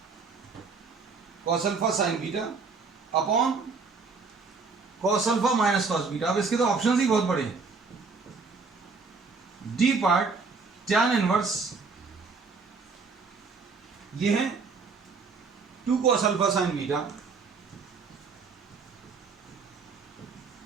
cos alpha sin beta upon cos alpha minus cos beta. अब इसके तो ऑप्शंस ही बहुत बड़े हैं। डी पार्ट tan इनवर्स ये है 2 cos alpha sin beta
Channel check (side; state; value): left; quieter; 4.6 dB